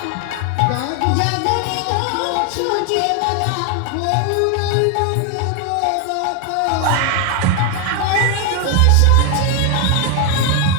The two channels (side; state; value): both; different; correlation 0.01